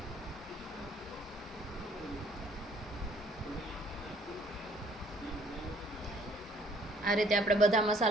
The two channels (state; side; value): normal; both; correlation 0.60